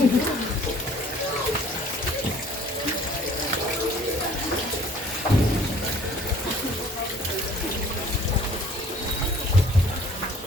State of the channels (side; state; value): both; normal; correlation 0.54